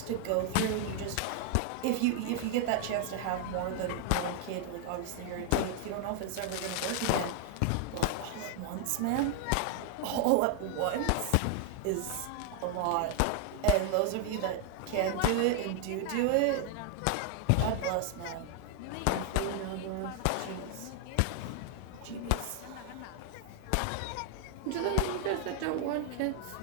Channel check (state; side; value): different; both; correlation 0.00